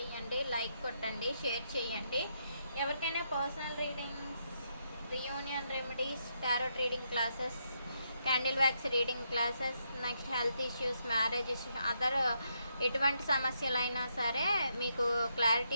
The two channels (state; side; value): inverted; both; correlation -0.78